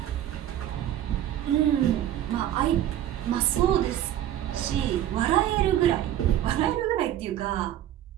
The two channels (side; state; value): left; quieter; 11.9 dB